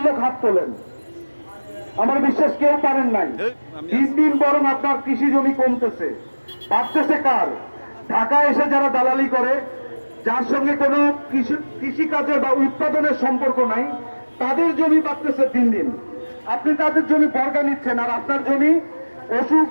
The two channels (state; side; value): inverted; both; correlation -1.00